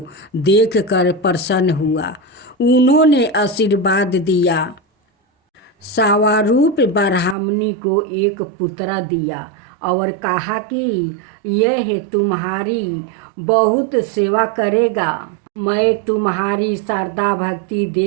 देखकर प्रसन्न हुआ। उन्होंने आशीर्वाद दिया। सावारूप ब्राह्मणी को एक पुत्र दिया और कहा कि यह तुम्हारी बहुत सेवा करेगा। मैं तुम्हारी श्रद्धा भक्ति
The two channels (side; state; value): left; drops out; at 7.4 s